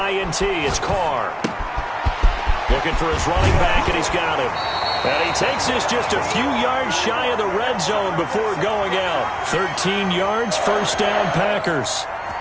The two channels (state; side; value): identical; both; correlation 1.00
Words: it's Carr. Looking for his running back, and he's got him. And he takes this just a few yards shy of the red zone before going out. 13 yards, first down Packers.